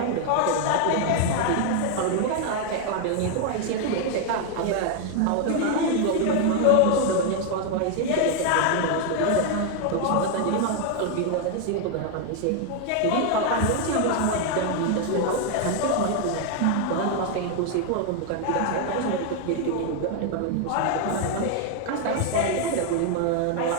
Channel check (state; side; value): different; both; correlation 0.01